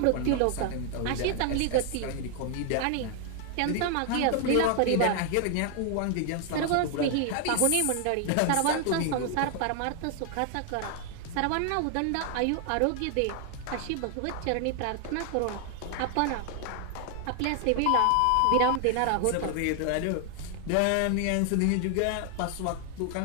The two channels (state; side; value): different; both; correlation 0.00